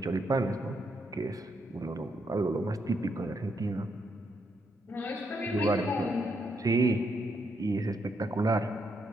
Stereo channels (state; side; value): normal; both; correlation 0.78